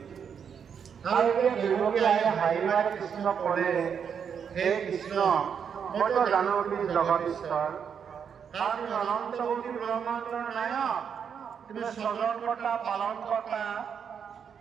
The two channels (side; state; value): left; quieter; 7.3 dB